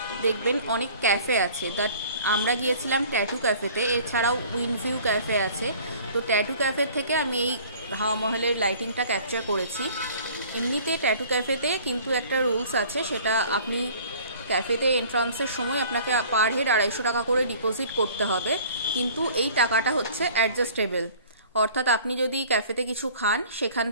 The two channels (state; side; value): inverted; both; correlation -0.50